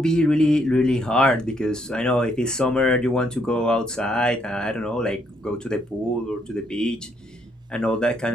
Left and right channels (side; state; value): both; normal; correlation 0.72